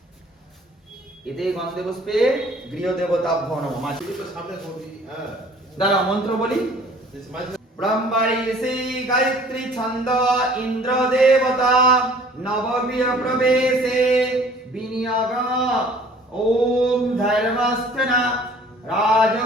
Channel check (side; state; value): both; normal; correlation 0.53